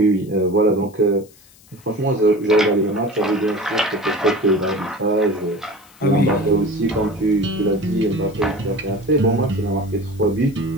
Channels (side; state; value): left; noise; hiss, 27 dB below the sound